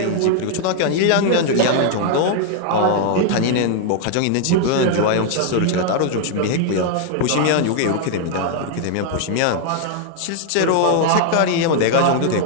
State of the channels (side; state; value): both; different; correlation 0.00